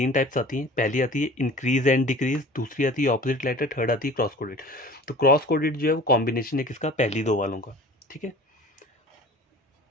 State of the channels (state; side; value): normal; both; correlation 0.43